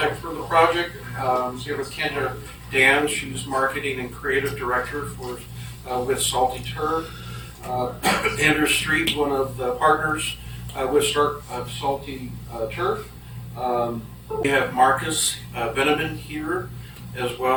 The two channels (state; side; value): identical; both; correlation 1.00